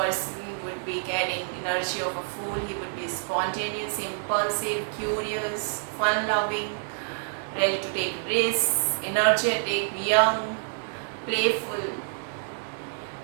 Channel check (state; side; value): silent; left; digital silence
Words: would be carrying energy of a fool. He would be spontaneous, impulsive, curious, fun-loving, ready to take risks, energetic, young, playful,